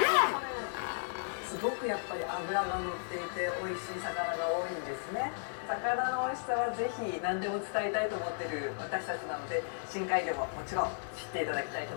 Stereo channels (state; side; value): silent; right; digital silence